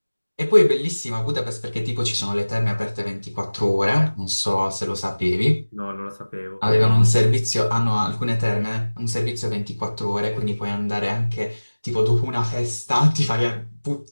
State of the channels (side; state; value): both; inverted; correlation -1.00